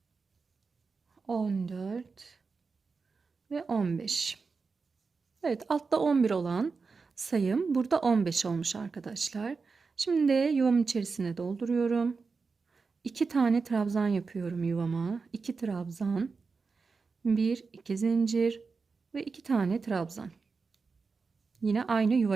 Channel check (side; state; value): left; quieter; 4.7 dB